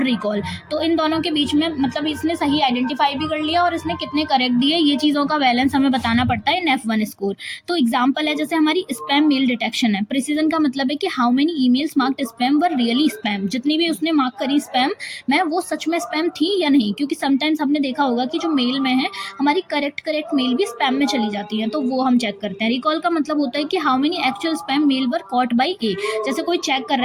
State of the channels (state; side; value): identical; both; correlation 1.00